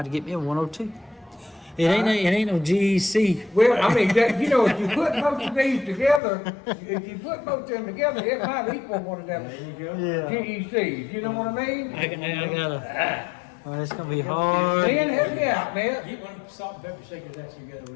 have to get me a 102. It ain't no GEC. Well, I mean, you know, if you put both of these together, if you put both of them together, it might equal one of them Yeah. GECs, you know what I mean? I gotta. Well, it's gonna be hard. Man, help me out, man. Get one of the salt and pepper shakers that you got over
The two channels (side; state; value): right; drops out; at 6.2 s